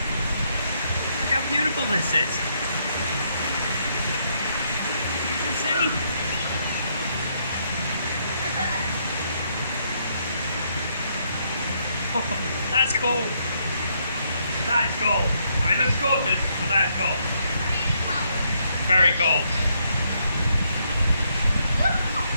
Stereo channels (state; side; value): inverted; both; correlation -0.74